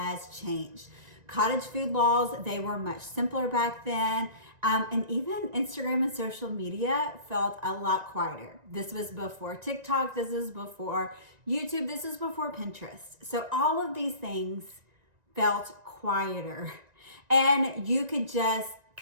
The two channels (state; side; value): late; left; 1.9 ms